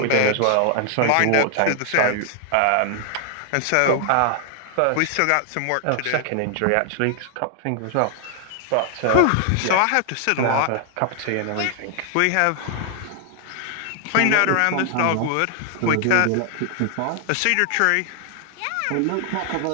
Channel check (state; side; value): different; both; correlation 0.00